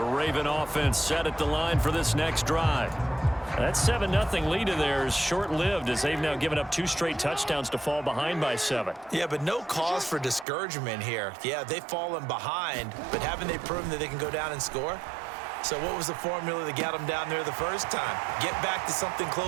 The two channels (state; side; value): drops out; left; at 10.5 s